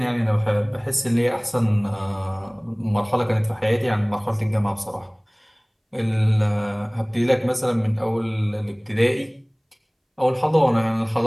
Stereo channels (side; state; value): both; identical; correlation 1.00